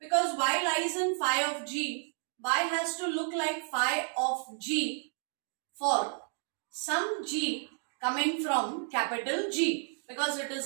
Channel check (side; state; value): left; silent; 56 dB below the other